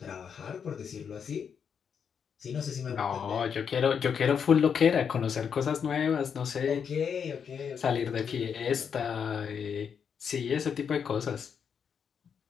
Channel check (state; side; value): quieter; right; 7.1 dB